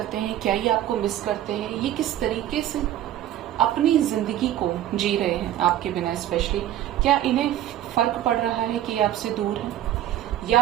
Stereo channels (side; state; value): left; quieter; 12.3 dB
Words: हैं, क्या ये आपको मिस करते हैं, ये किस तरीके से अपनी जिंदगी को जी रहे हैं आपके बिना, स्पेशली क्या इन्हें फर्क पड़ रहा है कि ये आपसे दूर है, या